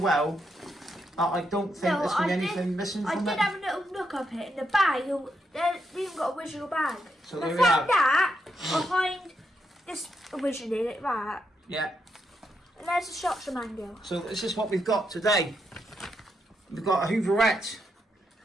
that I don't think there's been anything missing from it. I did have a little look up it in the bag. They even got a original bag. So I found that behind this originally, like that. Yeah. And there's the shots of mango. So this is what we've got today. We've got a Hooverette.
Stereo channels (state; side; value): normal; both; correlation 0.81